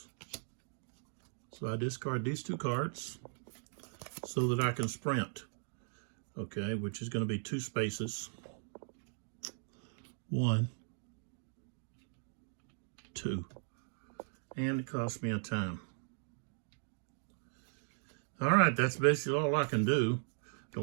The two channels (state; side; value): silent; left; digital silence